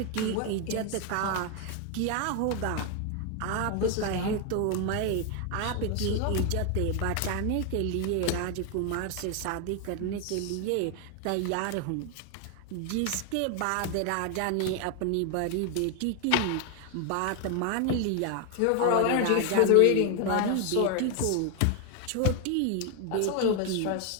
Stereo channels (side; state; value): both; different; correlation 0.01